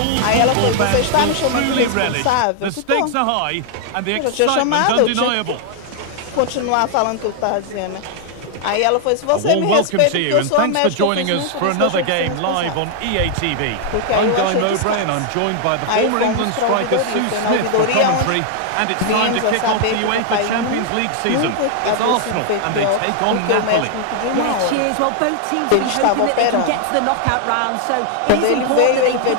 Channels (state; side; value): different; both; correlation 0.00